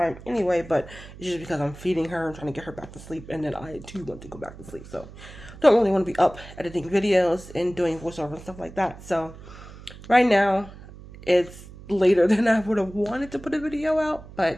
anyway, but it's just because I'm feeding her and trying to get her back to sleep, and then I too want to go back to sleep. So don't really want to be up editing videos and doing voiceover and stuff like that. So right now it's later than I would have wanted to put a video out,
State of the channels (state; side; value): noise; right; hum, 17 dB below the sound